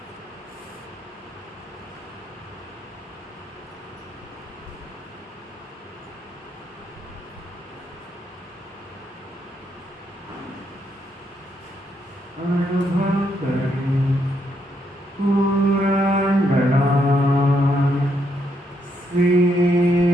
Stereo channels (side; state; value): both; normal; correlation 0.76